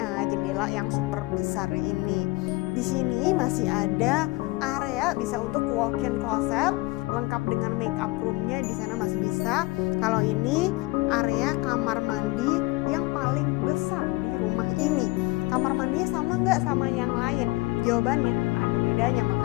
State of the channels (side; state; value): right; quieter; 22.1 dB